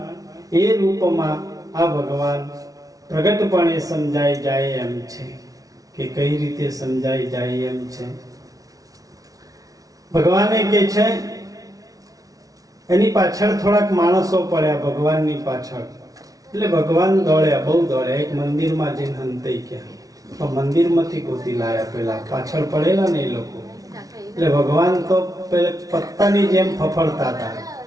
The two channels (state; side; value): late; left; 0.18 ms